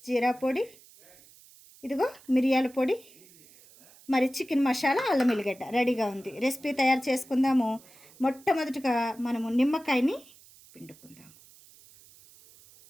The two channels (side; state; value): right; noise; hiss, 24 dB below the sound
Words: జీరా పొడి, ఇదిగో మిరియాల పొడి, మరి చికెన్ మసాలా, అల్లం ఎల్లిగడ్డ రెడీగా ఉంది. రెసిపీ తయారు చేసుకుందాము. మొట్టమొదటిగా మనము నిమ్మకాయని పిండుకుందాం.